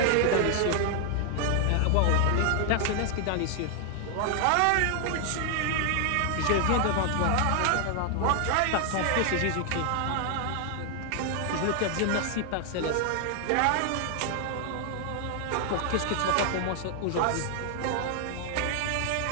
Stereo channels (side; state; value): both; different; correlation 0.00